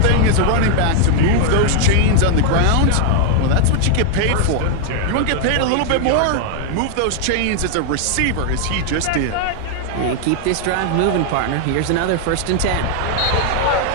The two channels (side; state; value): both; different; correlation 0.00